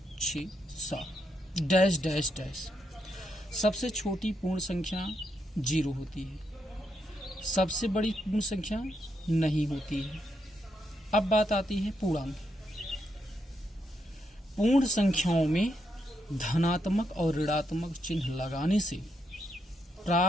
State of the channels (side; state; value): both; normal; correlation 0.80